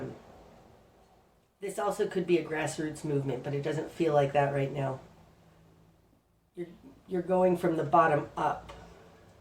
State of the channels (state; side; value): identical; both; correlation 1.00